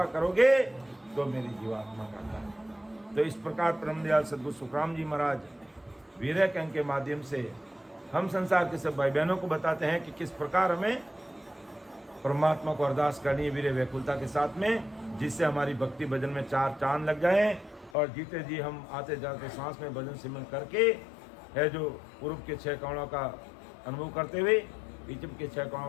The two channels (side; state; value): right; drops out; at 17.9 s